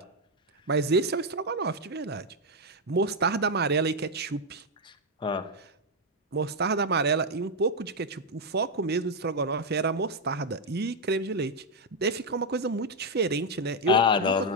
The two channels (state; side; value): normal; both; correlation 0.02